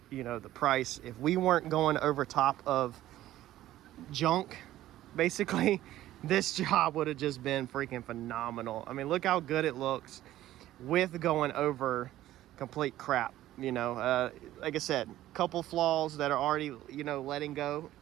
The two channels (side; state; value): left; quieter; 14.2 dB